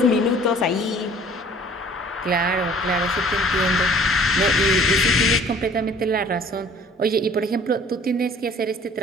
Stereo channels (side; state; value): both; normal; correlation 0.52